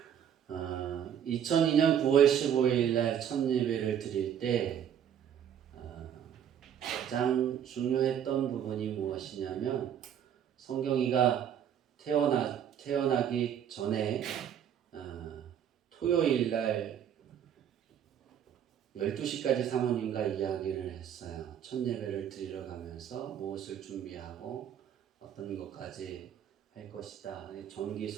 2002년 9월 15일 날 첫 예배를 드릴 때 가장 중요했던 부분이 무엇이냐면 성경이가 태어나기 전에 토요일 날 12시까지 사모님과 이야기를 했어요. 첫 예배를 드리러 가면서 무엇을 준비하고 어떤 것까지 할 것이다. 전기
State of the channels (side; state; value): left; quieter; 9.2 dB